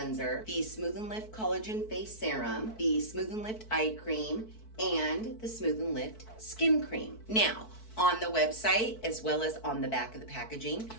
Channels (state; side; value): late; right; 4.6 ms